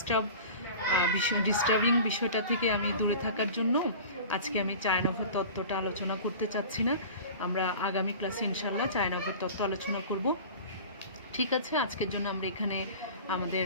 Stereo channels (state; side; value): inverted; both; correlation -0.38